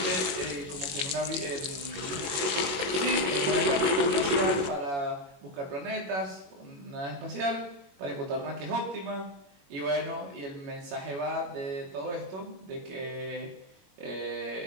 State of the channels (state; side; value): late; left; 21 ms